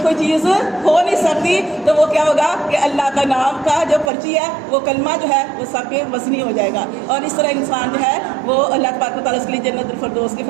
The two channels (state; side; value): drops out; left; at 4.1 s